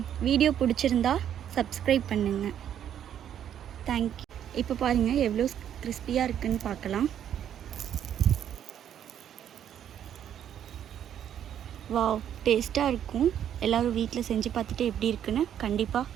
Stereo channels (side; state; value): left; quieter; 9.8 dB